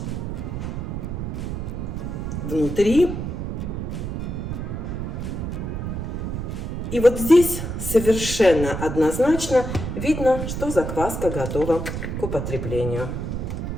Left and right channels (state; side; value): noise; right; rumble, 4 dB below the sound